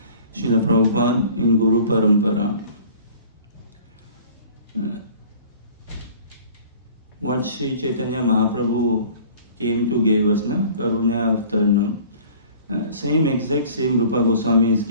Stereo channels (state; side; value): inverted; both; correlation -0.49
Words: Srila Prabhupada in Guru Parampara. What Sri Chaitanya Mahaprabhu came to give us, na? Karuna Avtarnam. Same Rupa Goswami is